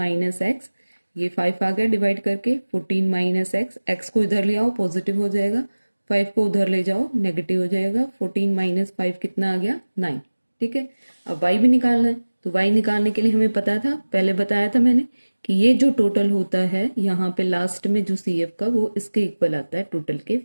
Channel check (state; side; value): inverted; both; correlation -1.00